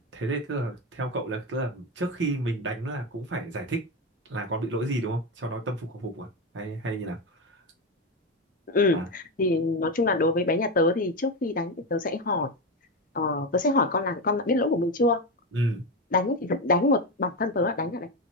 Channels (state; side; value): normal; both; correlation 0.14